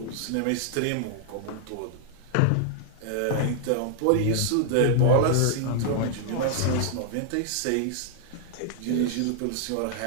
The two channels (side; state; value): both; different; correlation -0.01